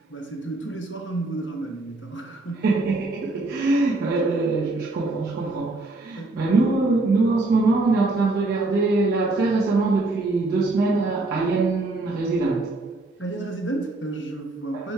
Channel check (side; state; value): left; quieter; 3.1 dB